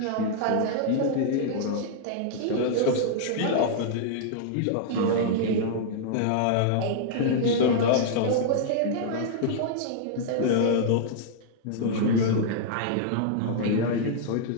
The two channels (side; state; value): both; different; correlation -0.01